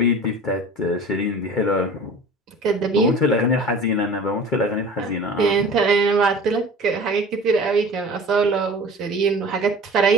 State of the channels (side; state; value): both; normal; correlation 0.40